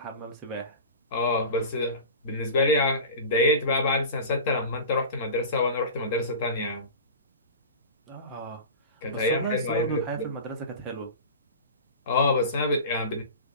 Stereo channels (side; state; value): both; inverted; correlation -0.33